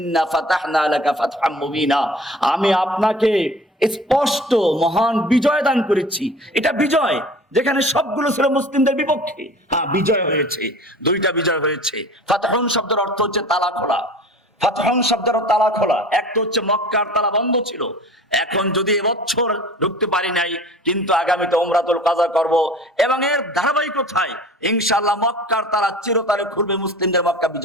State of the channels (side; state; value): both; normal; correlation 0.42